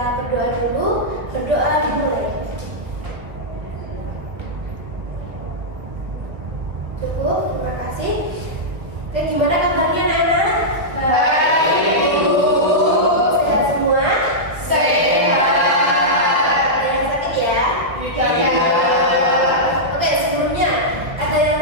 berdoa dulu. Berdoa dimulai. Cukup, terima kasih. Oke, gimana kabarnya anak-anak? Baik, Bu. Sehat semua? Sehat. Ada yang sakit ya? Tidak. Oke, sebelumnya ada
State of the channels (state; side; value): late; left; 1.5 ms